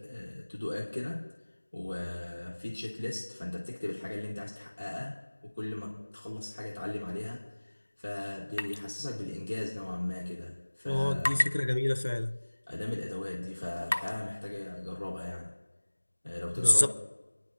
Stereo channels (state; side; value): inverted; both; correlation -1.00